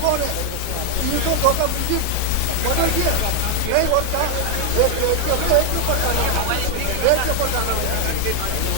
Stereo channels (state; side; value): different; both; correlation 0.00